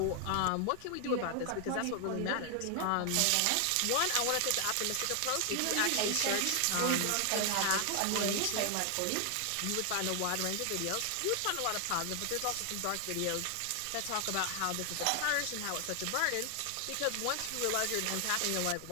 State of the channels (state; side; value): different; both; correlation 0.00